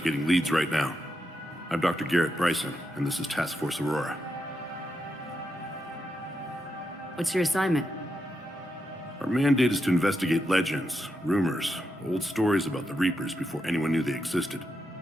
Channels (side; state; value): both; normal; correlation 0.84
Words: leads right now. I'm Dr. Garrett Bryson, and this is Task Force Aurora. What's your assignment? Our mandate is to investigate legends, rumors, old stories about the Reapers before anyone knew they existed.